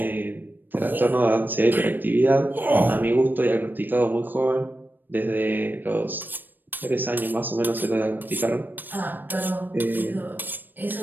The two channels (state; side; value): late; left; 0.092 ms